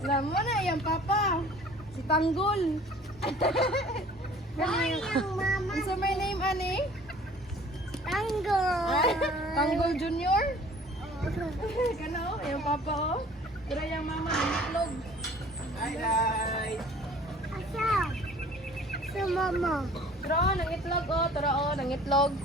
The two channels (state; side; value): normal; both; correlation 0.50